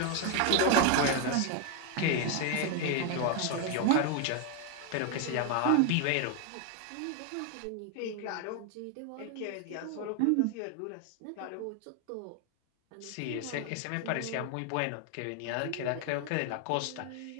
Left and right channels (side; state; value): both; different; correlation 0.01